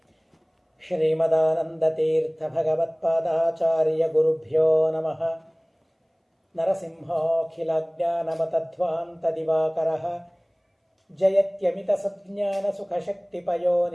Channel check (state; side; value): identical; both; correlation 1.00